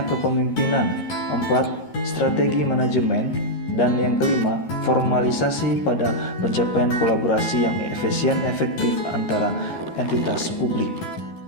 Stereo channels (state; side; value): late; right; 13 ms